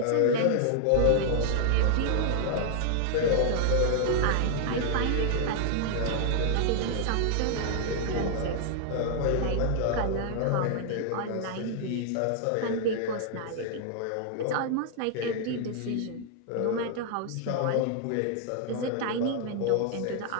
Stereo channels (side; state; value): both; different; correlation 0.00